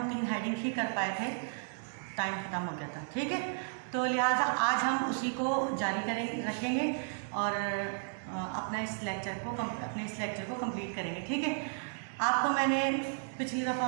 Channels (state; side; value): silent; left; 55 dB below the other